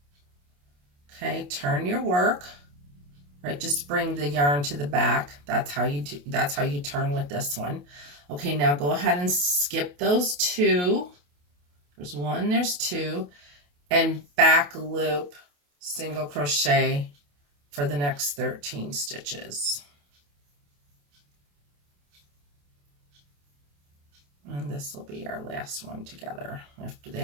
Okay, turn your work. Right, just bring the yarn to the back. That's how you do, that's how you turn with this one. Okay, now go ahead and skip those 2. There's 1, there's 2, and back loop single crochet for the next 13 stitches. And this will be our last one together. After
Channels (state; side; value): late; left; 28 ms